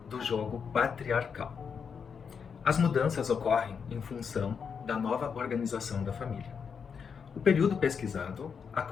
do jogo patriarcal. As mudanças ocorrem em função da nova organização da família. O período pesquisado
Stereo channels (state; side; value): quieter; right; 6.4 dB